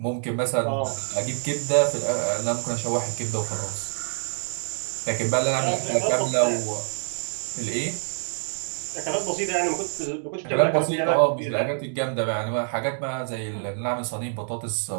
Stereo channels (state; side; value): silent; left; digital silence